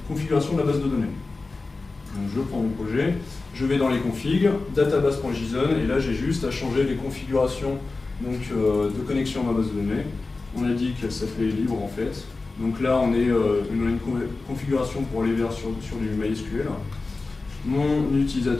configuration de la base de données. Donc je prends mon projet, je vais dans les configs, database.json, et là j'ai juste à changer les configurations de connexion à ma base de données. On a dit qu'elle s'appelait libre en fait. Donc là on a une configuration pour aller vers sur du MySQL. Mon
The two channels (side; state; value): right; quieter; 3.7 dB